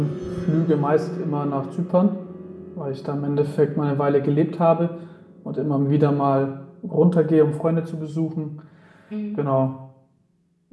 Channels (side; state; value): both; identical; correlation 1.00